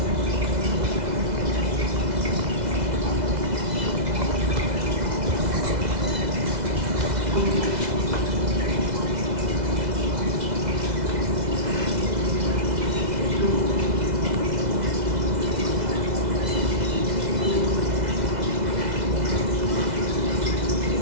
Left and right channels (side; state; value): left; late; 2.0 ms